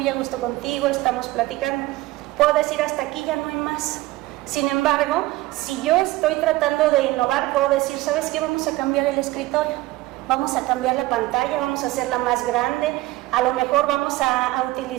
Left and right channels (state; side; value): quieter; left; 18.6 dB